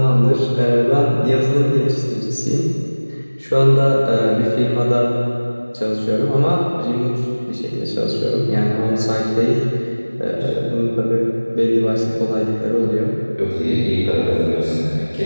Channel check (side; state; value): both; inverted; correlation -1.00